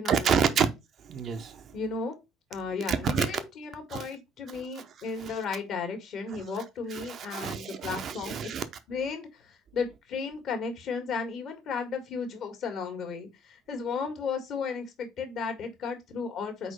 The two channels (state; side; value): normal; both; correlation 0.61